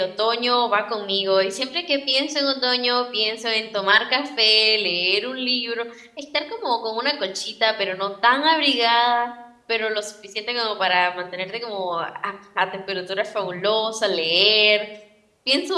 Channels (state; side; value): identical; both; correlation 1.00